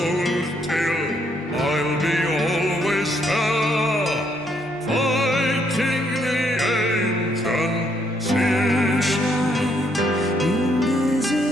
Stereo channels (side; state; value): both; normal; correlation 0.72